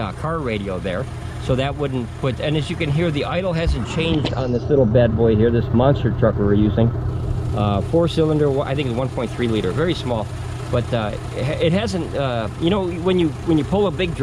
car radio there. So that wouldn't put, and as you can hear, the idle hasn't changed on this little bad boy here, this monster truck we're using. 4-cylinder, I think it's 1.3 liter, very small. But it hasn't, you know, when you pull a big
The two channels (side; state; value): both; identical; correlation 1.00